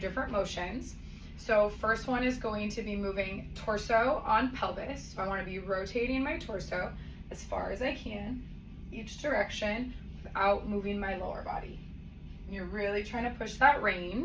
different motions. So first one is going to be moving torso on pelvis. So I want to be rotating my torso as far as I can, each direction, without moving my lower body. And you're really trying to push that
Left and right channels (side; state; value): both; identical; correlation 1.00